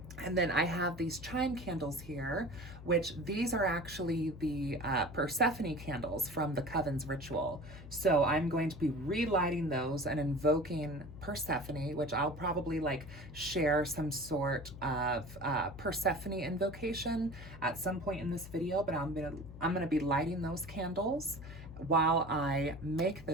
And then I have these chime candles here, which these are actually the Persephone candles from the Coven's ritual. So I'm going to be relighting those and invoking Persephone, which I'll probably like share some sort of Persephone invocation at some point in this video, but I'm gonna be lighting those candles while I make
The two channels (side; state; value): left; noise; hum, 14 dB below the sound